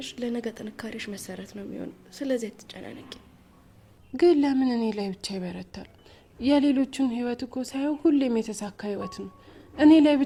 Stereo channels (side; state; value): both; identical; correlation 1.00